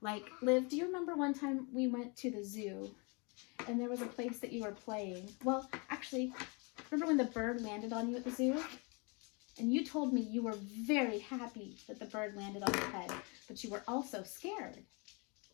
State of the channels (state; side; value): quieter; right; 31.7 dB